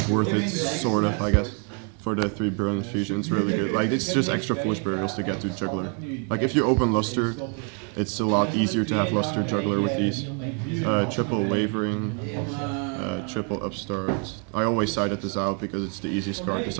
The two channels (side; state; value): left; quieter; 39.5 dB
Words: worth it, sort of, I guess, for the 3 Brilliant Fusion. It's really good. Like, it's just extra Foolish Burials to get to Juggler. Like, if you open Luster, it's a lot easier to have Luster Juggler with these. Triple Wavering, triple Upstart. I always sided this out because it's the easiest card to